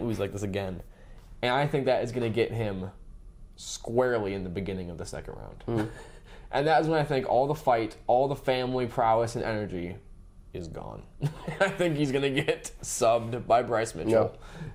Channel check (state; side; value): identical; both; correlation 1.00